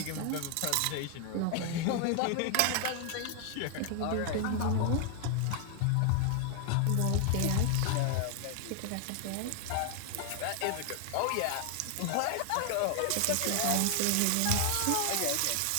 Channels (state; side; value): different; both; correlation 0.00